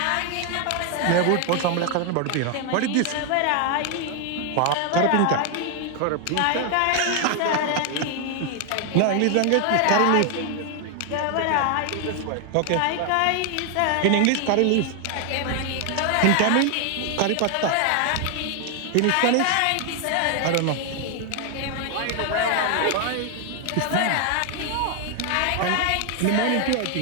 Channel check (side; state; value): both; different; correlation 0.00